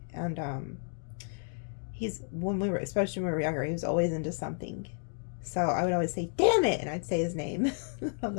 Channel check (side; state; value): right; silent; 57 dB below the other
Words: and especially when we were younger, he was always into something, so I would always say, damn it, and I'd say his name. I'm